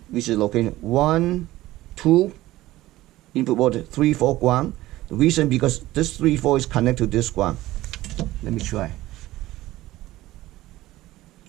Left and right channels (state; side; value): quieter; left; 16.6 dB